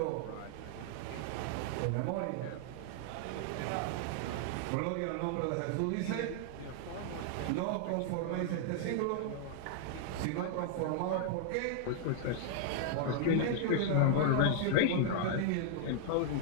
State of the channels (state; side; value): different; both; correlation -0.01